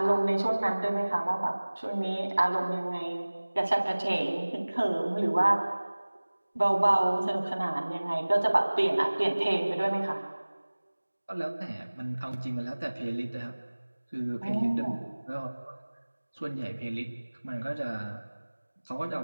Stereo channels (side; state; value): both; inverted; correlation -1.00